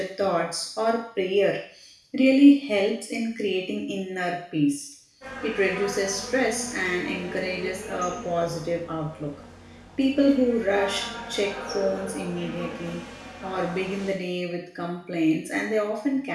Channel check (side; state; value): both; identical; correlation 1.00